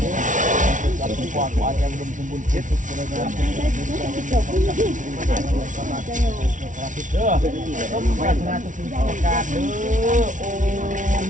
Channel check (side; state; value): left; late; 0.37 ms